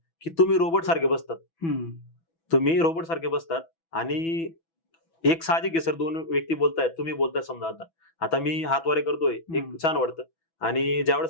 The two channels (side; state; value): right; late; 6.1 ms